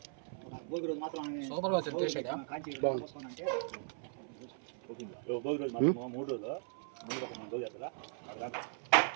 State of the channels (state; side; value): silent; left; 52 dB below the other